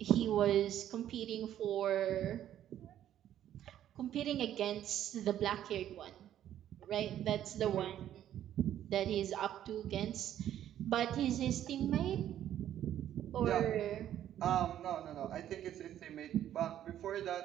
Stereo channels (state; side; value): quieter; left; 11.3 dB